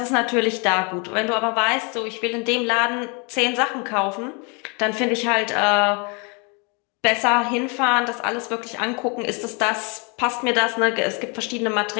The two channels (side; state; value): right; quieter; 33.0 dB